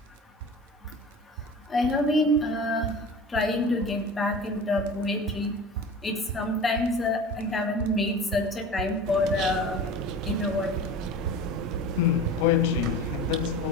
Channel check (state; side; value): normal; both; correlation 0.36